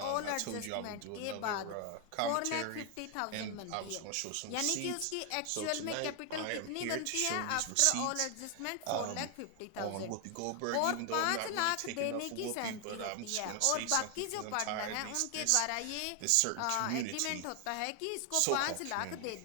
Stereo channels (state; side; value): different; both; correlation 0.00